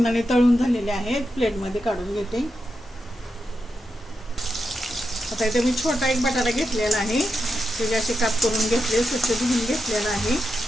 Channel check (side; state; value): both; normal; correlation 0.87